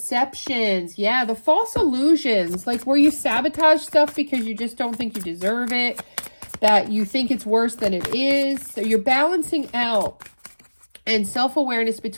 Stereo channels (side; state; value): both; inverted; correlation -1.00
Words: Yeah, the false illusions. Like where you sabotage stuff because you just don't think you deserve it. That you think it's worse than it is. So you're balancing out and self-awareness